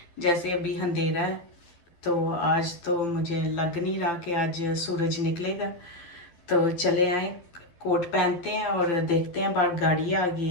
जैसे अभी अंधेरा है, तो आज तो मुझे लग नहीं रहा कि आज सूरज निकलेगा। तो चले आए, कोट पहनते हैं और देखते हैं। बाहर गाड़ी आ गई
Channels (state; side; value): late; right; 12 ms